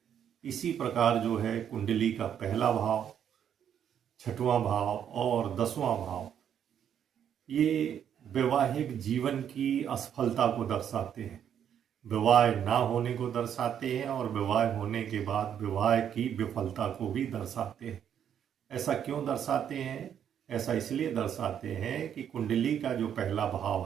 इसी प्रकार जो है कुंडली का पहला भाव, 6वां भाव और 10वां भाव ये वैवाहिक जीवन की असफलता को दर्शाते हैं, विवाह ना होने को दर्शाते हैं और विवाह होने के बाद विवाह की विफलता को भी दर्शाते हैं। ऐसा क्यों दर्शाते हैं? ऐसा इसलिए दर्शाते हैं कि कुंडली का जो पहला भाव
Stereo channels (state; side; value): quieter; left; 9.1 dB